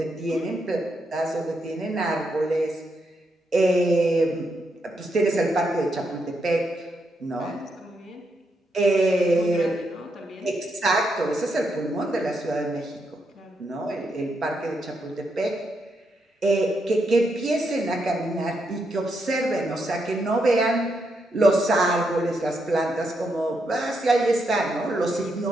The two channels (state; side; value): normal; both; correlation 0.81